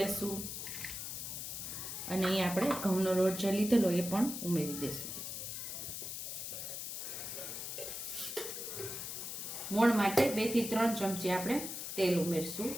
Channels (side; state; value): left; noise; hiss, 6 dB below the sound